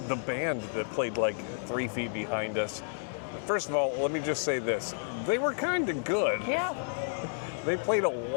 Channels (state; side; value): silent; right; digital silence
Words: band that played like 3 feet behind us, first of all, let me just say this. They were kind of good. Yeah. They played a